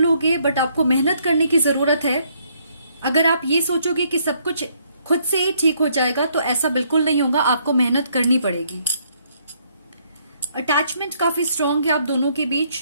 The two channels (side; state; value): both; inverted; correlation -0.69